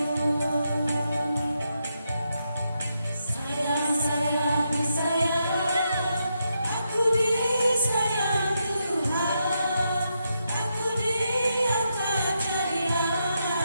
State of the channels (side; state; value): both; inverted; correlation -0.83